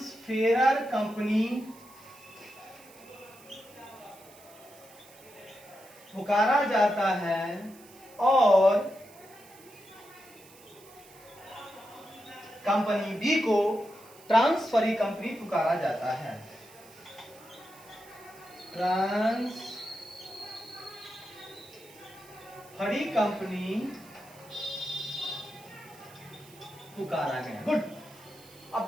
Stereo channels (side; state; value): right; noise; hiss, 23 dB below the sound